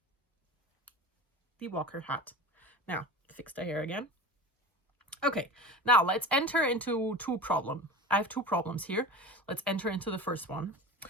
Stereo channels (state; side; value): normal; both; correlation 0.32